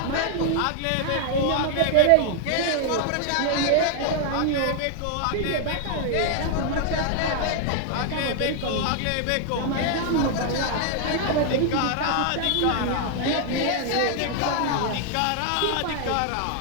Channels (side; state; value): both; different; correlation 0.00